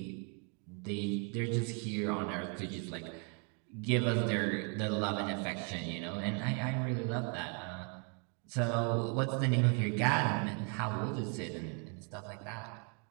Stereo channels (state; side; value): quieter; left; 38.5 dB